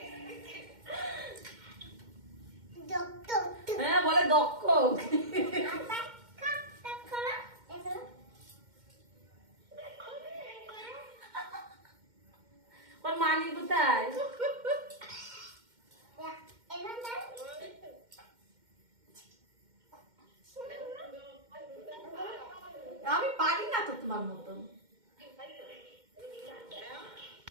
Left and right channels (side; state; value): left; late; 2.1 ms